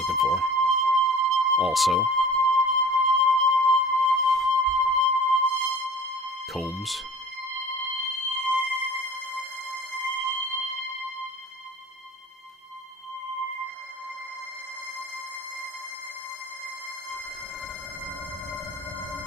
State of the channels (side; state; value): both; normal; correlation 0.43